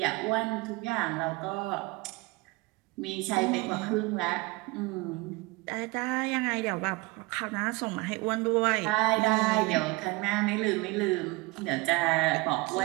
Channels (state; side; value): quieter; left; 23.7 dB